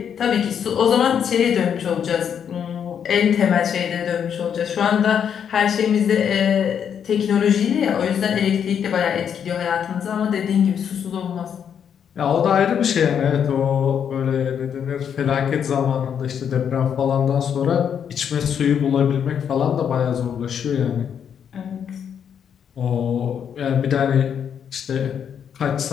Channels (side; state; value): right; quieter; 8.1 dB